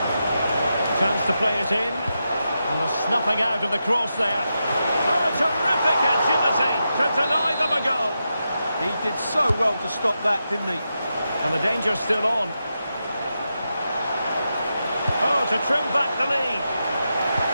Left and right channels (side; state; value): both; inverted; correlation -0.88